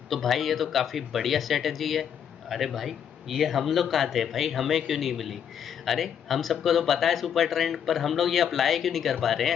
तो भाई ये तो काफ़ी बढ़िया स्ट्रेटजी है। अरे भाई ये हम लोग कहाँ थे भाई, हमें क्यों नहीं मिली? अरे हम सबको तो पता है सुपर ट्रेंड, पर हम लोग ये अप्लाई क्यों नहीं कर पा रहे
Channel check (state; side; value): quieter; right; 8.5 dB